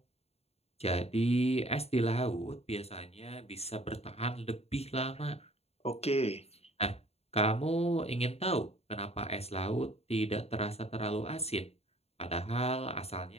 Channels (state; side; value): late; right; 0.30 ms